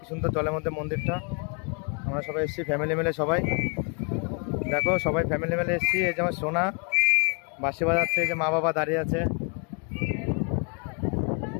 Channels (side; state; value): right; quieter; 36.4 dB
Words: সুন্দর জলের মধ্যে মন্দিরটা। আমরা সবাই এসেছি ফ্যামিলি মিলে সবাই, দেখো সবাই ফ্যামিলি মিলে এসেছি। এই যে আমার সোনা বাঁশি বাজাচ্ছে, এই যে মা বাবা দাঁড়িয়ে আছে,